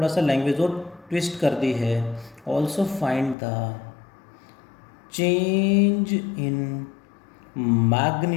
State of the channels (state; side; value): drops out; right; at 3.4 s